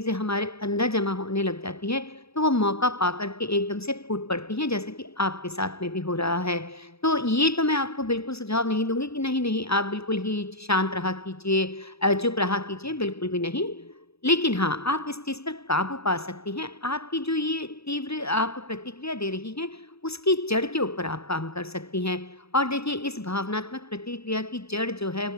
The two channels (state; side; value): late; right; 0.78 ms